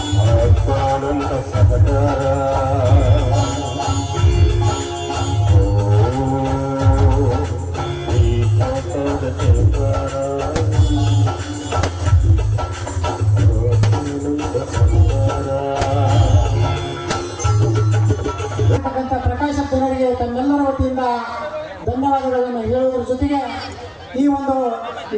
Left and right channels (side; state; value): both; identical; correlation 1.00